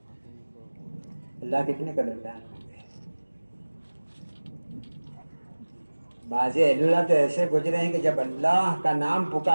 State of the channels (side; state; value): both; inverted; correlation -1.00